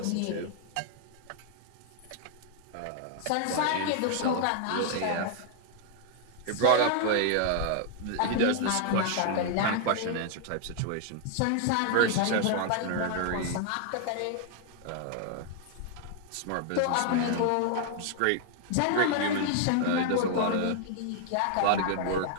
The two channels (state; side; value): different; both; correlation 0.00